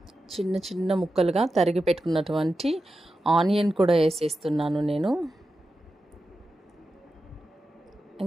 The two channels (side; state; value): both; normal; correlation 0.91